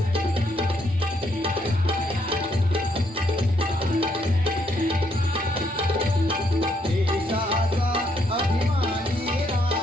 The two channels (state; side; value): normal; both; correlation 0.72